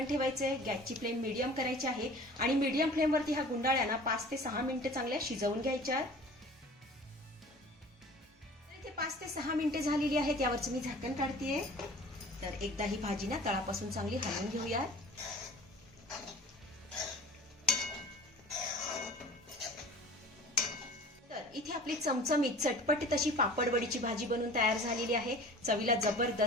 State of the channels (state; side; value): normal; both; correlation 0.43